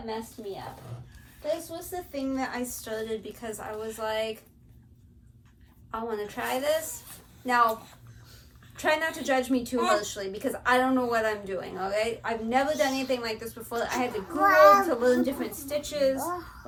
messed me up. This was the thing that I started because I was like, I want to try this. Now, try not to judge me too harshly because I don't know what I'm doing, okay? I've never done anything like this before. I had to Google to learn different stitches.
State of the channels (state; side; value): identical; both; correlation 1.00